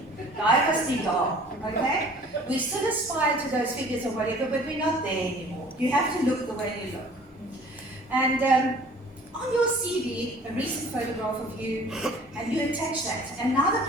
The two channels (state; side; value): normal; both; correlation 0.50